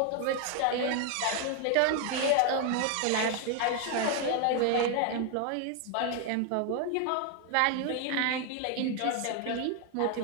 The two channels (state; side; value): different; both; correlation 0.00